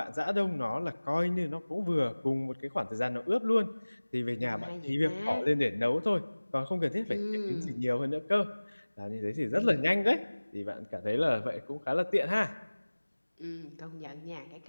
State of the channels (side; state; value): both; inverted; correlation -1.00